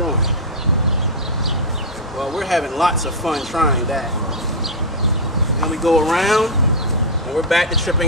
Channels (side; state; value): both; normal; correlation -0.02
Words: Well, we're having lots of fun trying that. Then we go around and we're back to